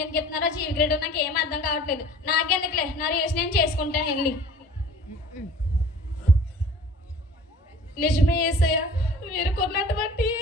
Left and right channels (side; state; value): both; normal; correlation 0.46